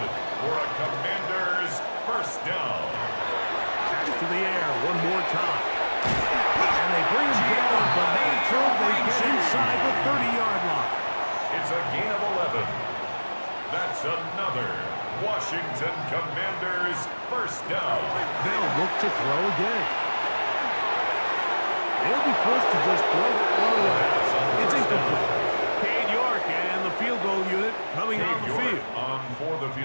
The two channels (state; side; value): inverted; both; correlation -1.00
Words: for a Commanders first down. To the air one more time. And they bring him down, but not until they get inside the 30-yard line. It's a gain of 11. That's another Washington Commanders first down. They'll look to throw again. They'll be forced to just throw that one away. It's incomplete. Cade York and the field goal unit coming on the field.